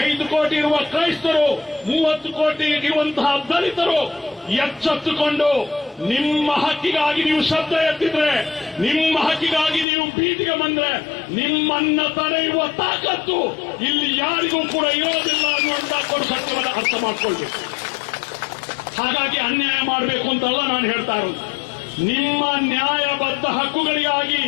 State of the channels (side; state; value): right; drops out; at 9.9 s